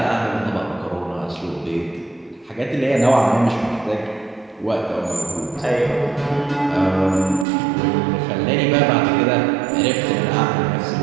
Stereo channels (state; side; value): drops out; left; at 7.5 s